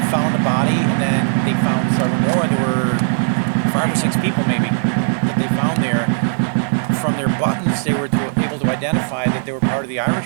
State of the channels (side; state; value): left; silent; 59 dB below the other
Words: found a body, and then they found several more. There were 5 or 6 people maybe that they found there. From their buttons, they were able to identify that they were part of the